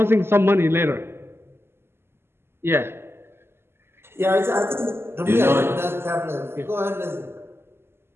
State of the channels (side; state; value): left; late; 0.12 ms